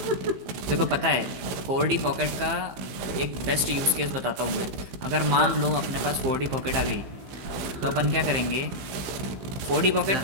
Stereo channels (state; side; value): late; left; 15 ms